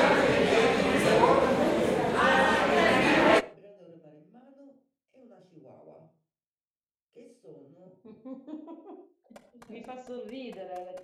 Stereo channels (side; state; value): both; identical; correlation 1.00